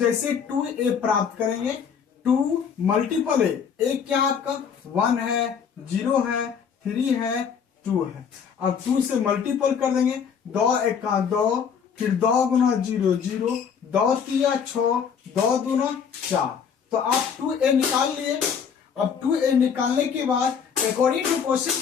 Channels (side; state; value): right; quieter; 7.0 dB